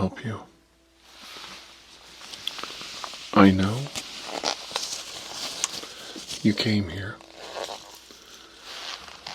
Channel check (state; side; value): identical; both; correlation 1.00